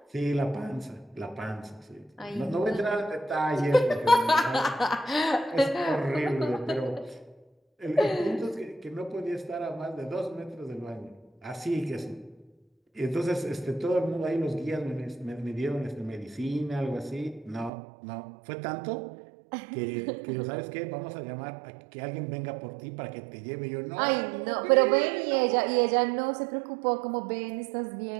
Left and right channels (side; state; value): left; drops out; at 17.7 s